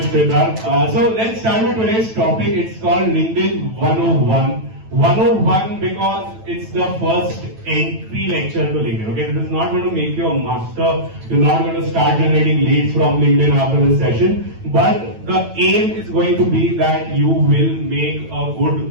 Siddharth. So let's start with today's topic. It's called LinkedIn 101. 101 because it's the first entry lecture to LinkedIn. Okay, this is not going to make you a master. You're not going to start generating leads from LinkedIn after this session. But the aim is going to be that you will make a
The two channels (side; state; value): left; late; 9.1 ms